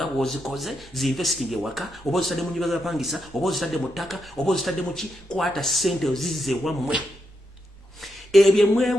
bw'ozikoze zinvesting ewaka oba ozitadde mu nnyumba z'abapangisa oba ozitadde mu ttaka oba ozitadde mu ki. Kwata sente ozizze wammwe. Ebyo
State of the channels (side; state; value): both; normal; correlation 0.83